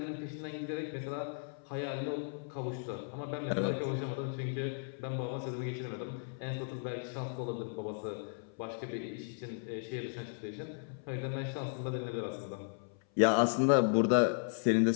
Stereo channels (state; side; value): silent; right; 54 dB below the other